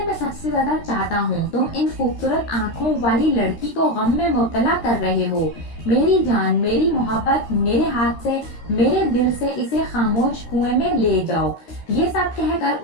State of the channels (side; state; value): right; late; 13 ms